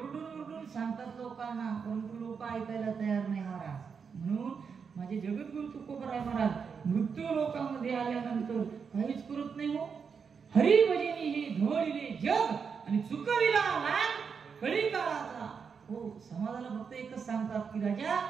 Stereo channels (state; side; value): quieter; left; 6.1 dB